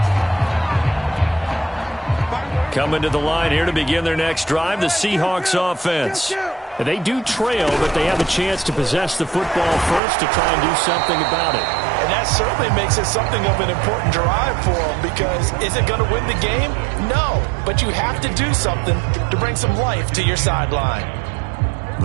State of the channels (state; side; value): drops out; left; at 10.0 s